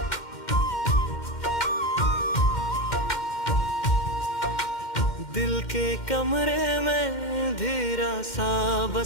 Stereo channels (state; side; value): late; right; 2.1 ms